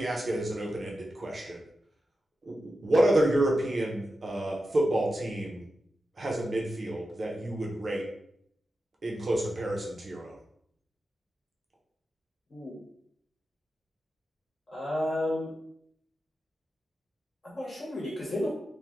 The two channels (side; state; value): both; normal; correlation 0.91